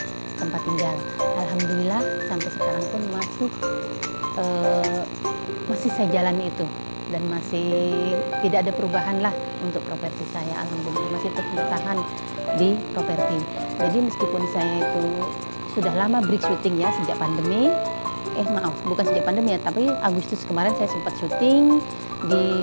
tempat tinggal. Alhamdulillah sampai sekarang pun masih saya jalani itu dan masih tidak ada perubahan lah untuk properti saya. Alhamdulillah masih tetap bertahan di properti. Jadi meskipun saya itu sudah lama break syuting ya sejak pandemi, bukan sejak pandemi ya, tapi Agustus kemarin saya sempat syuting di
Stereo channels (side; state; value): both; inverted; correlation -1.00